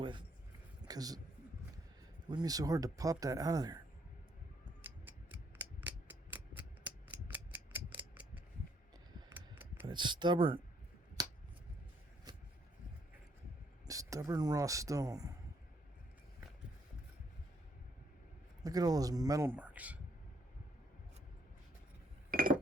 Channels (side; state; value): both; normal; correlation 0.70